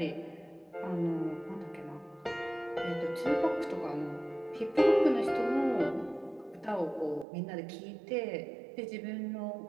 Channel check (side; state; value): left; drops out; at 7.2 s